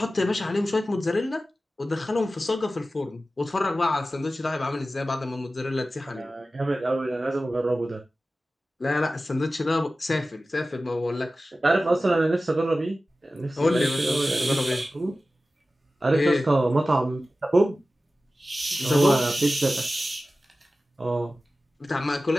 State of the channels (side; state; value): both; normal; correlation 0.95